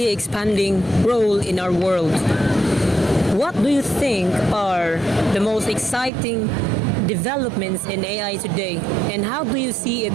expanding role in our world. What do you think are the most exciting developments in AI today, and how do you see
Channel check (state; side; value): drops out; left; at 6.1 s